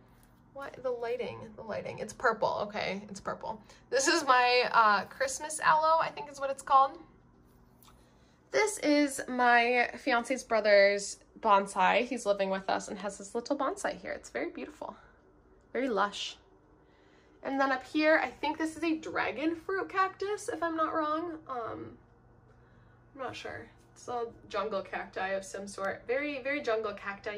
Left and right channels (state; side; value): identical; both; correlation 1.00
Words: What? The lighting. It's purple. Okay, it's purple. This is my Christmas aloe, I think is what it's called. This is my fiance's brother's bonsai. He's living with us and has this little bonsai here. It's very beautiful. Very lush. And then up here, I think this is a dragon fruit cactus, if I'm not wrong. I'm not sure. It's a jungle cacti of some sort. Very, very jungle